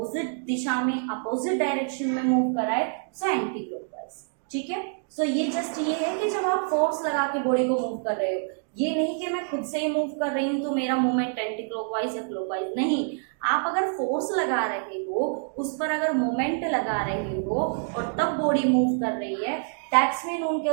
दिशा में, अपोजिट डायरेक्शन में मूव कराए, सो एंटी क्लॉकवाइज, ठीक है। सो ये जस्ट ये है कि जब आप फोर्स लगा के बॉडी को मूव कर रहे हो, ये नहीं कि मैं खुद से ही मूव कर रही हूँ तो मेरा मूवमेंट एंटी क्लॉकवाइज या क्लॉकवाइज, नहीं। आप अगर फोर्स लगा रहे हो, उस पर अगर मोमेंट लगा रहे हो और तब बॉडी मूव कर रही है, दैट्स मीन उनके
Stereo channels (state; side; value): silent; left; digital silence